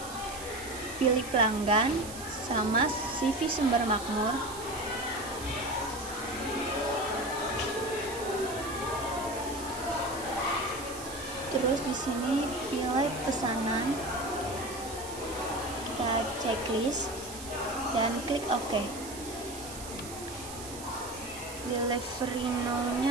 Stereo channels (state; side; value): noise; right; hiss, 12 dB below the sound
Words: Pilih pelanggan sama CV Sumber Makmur. Terus di sini pilih pesanan. Kita checklist dan klik OK. Delivery